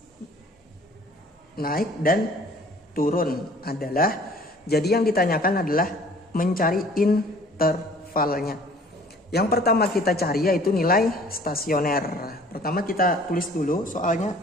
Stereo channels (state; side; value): normal; both; correlation 0.53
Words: Naik dan turun adalah, jadi yang ditanyakan adalah mencari intervalnya. Yang pertama kita cari yaitu nilai stasioner. Pertama kita tulis dulu